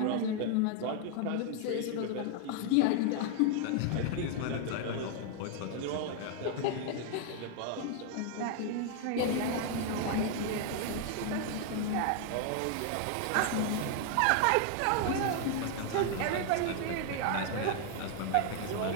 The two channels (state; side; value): different; both; correlation 0.00